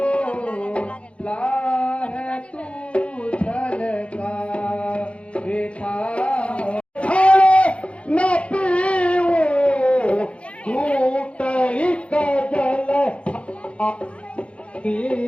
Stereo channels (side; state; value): right; late; 0.061 ms